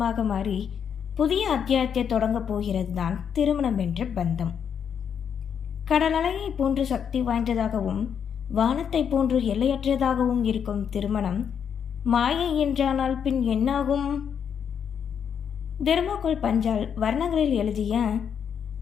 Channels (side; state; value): right; quieter; 7.7 dB